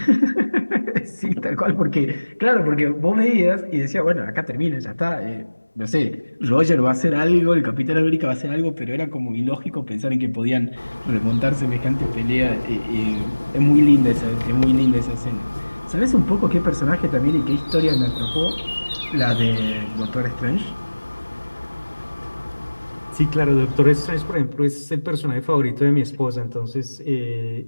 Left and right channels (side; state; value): both; inverted; correlation -1.00